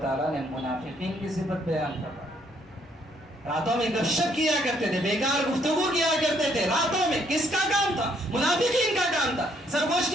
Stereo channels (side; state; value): both; normal; correlation 0.68